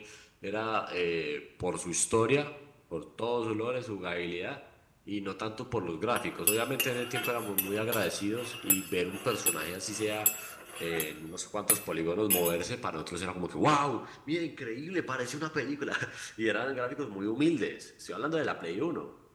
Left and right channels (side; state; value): both; identical; correlation 1.00